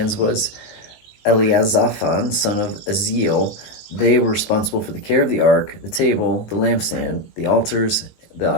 was Eliazaphan, son of Aziel. They were responsible for the care of the ark, the table, the lampstand, the altars,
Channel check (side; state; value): right; late; 19 ms